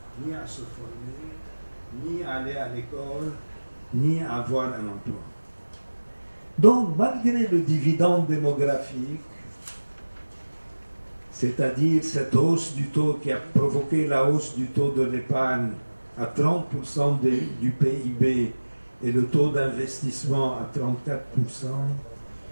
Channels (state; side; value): inverted; both; correlation -1.00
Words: ni à se former, ni à aller à l'école, ni à avoir un emploi. Donc, malgré le dividende démographique, c'est-à-dire cette hausse du taux qui a provoqué la hausse du taux de l'épargne à 30% du PIB et le taux d'investissement à 34%